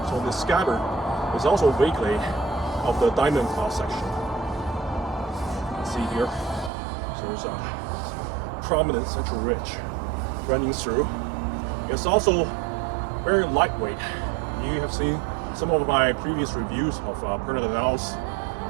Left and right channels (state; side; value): drops out; left; at 6.7 s